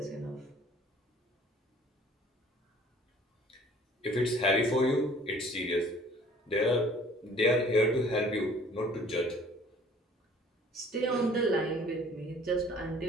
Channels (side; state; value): both; normal; correlation 0.53